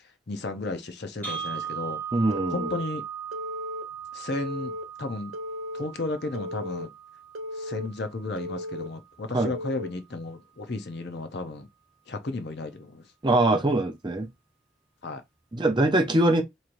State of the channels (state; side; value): normal; both; correlation 0.53